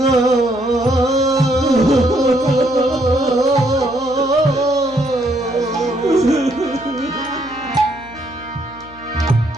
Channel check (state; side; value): noise; left; hum, 22 dB below the sound